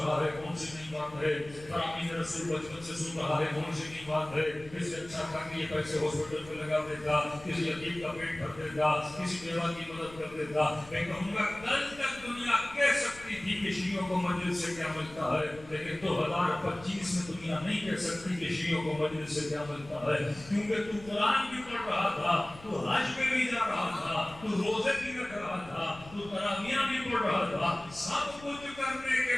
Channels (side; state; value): left; noise; rumble, 19 dB below the sound